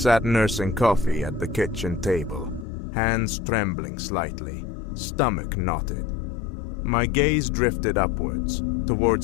nursing coffee at the kitchen table. hands trembling slightly, stomach knotted. My gaze drifted upwards,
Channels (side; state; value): right; drops out; at 2.7 s